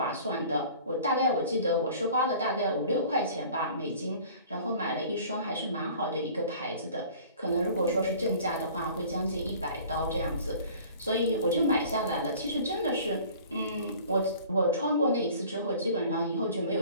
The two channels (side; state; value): both; inverted; correlation -0.47